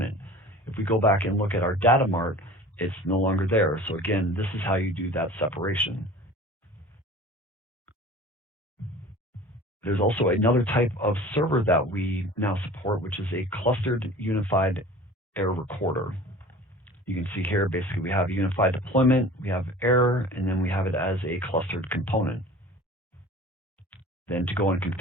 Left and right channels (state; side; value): normal; both; correlation 0.42